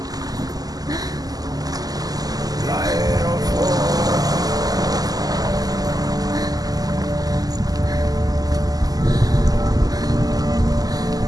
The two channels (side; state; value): left; late; 0.18 ms